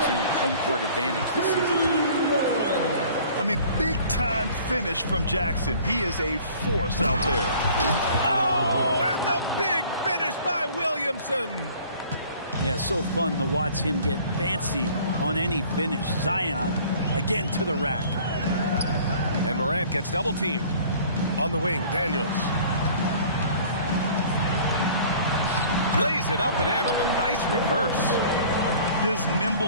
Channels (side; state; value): both; inverted; correlation -0.50